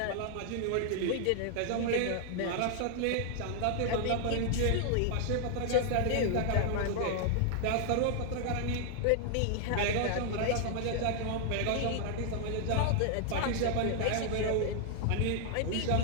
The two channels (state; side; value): different; both; correlation 0.00